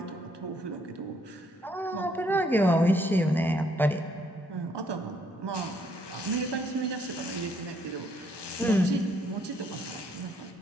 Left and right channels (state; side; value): normal; both; correlation 0.69